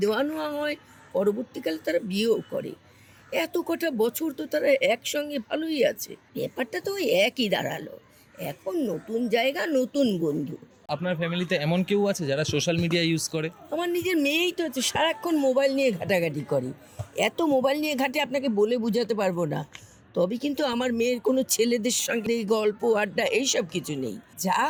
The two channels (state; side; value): identical; both; correlation 1.00